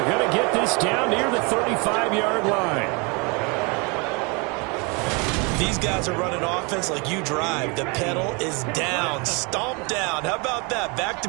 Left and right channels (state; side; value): quieter; left; 30.6 dB